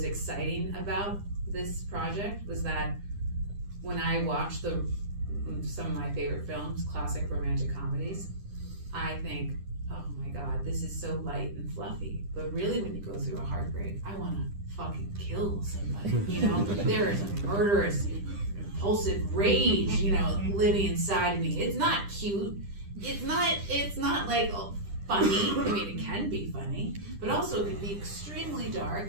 exciting about this project was that when I watched some of my favorite films, classic romantic comedies, I think, oh my God, this is so light and fluffy. But really, when you go through a heartbreak, I want to fucking kill somebody. There is a murderous, impulsive rage, living inside me. It's not cute. It's not like funny. I mean, it can be funny, but also it can be extremely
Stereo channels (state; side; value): late; left; 10 ms